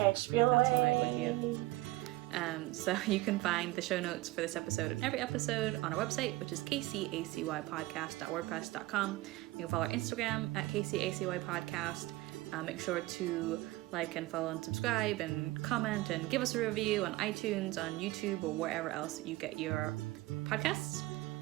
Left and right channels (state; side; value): quieter; left; 19.2 dB